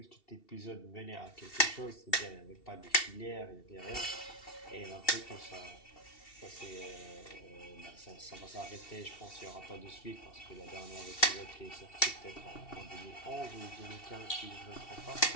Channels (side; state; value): right; late; 2.7 ms